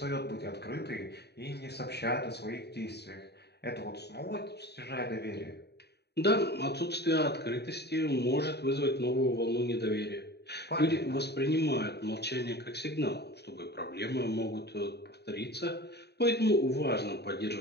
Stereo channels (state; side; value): late; right; 0.48 ms